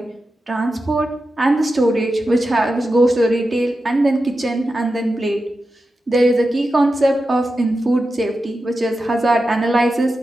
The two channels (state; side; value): normal; both; correlation 0.91